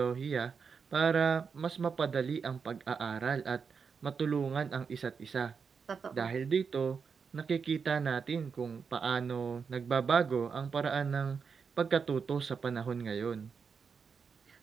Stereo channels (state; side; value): quieter; left; 5.8 dB